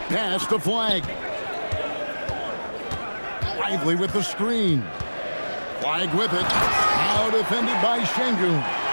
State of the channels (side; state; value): both; inverted; correlation -1.00